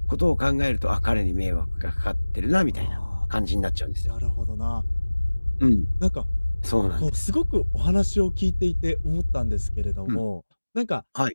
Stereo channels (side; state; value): both; inverted; correlation -1.00